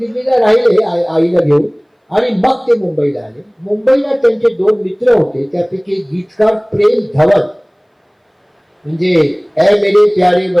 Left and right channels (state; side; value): identical; both; correlation 1.00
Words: राहिले आईला घेऊन आणि मग ते मुंबईला आले. मुंबईला त्यांचे 2 मित्र होते, त्यापैकी एक गीतकार प्रेम धवन, म्हणजे ए मेरे प्यारे